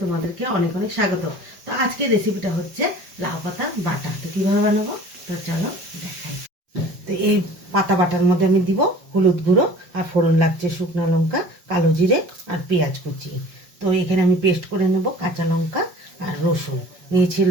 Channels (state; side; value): late; left; 5.4 ms